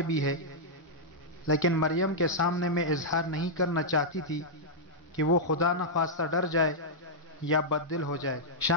بھی ہے، لیکن مریم کے سامنے میں اظہار نہیں کرنا چاہتی تھی کہ وہ خدا نہ خواستہ ڈر جائے یا بددل ہو جائے۔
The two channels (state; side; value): normal; both; correlation -0.08